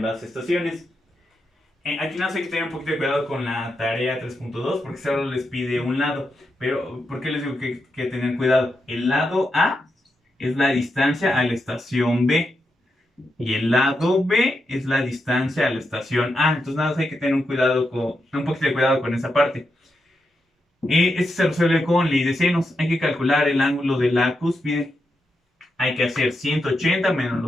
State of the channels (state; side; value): normal; both; correlation 0.85